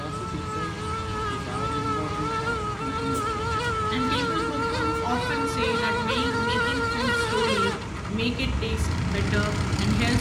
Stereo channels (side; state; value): both; identical; correlation 1.00